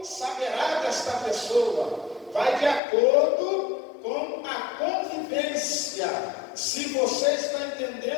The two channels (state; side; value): drops out; right; at 2.8 s